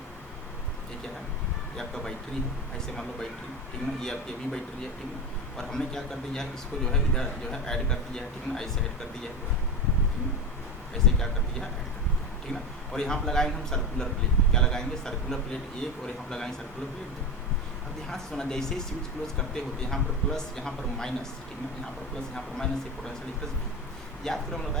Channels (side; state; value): both; normal; correlation 0.22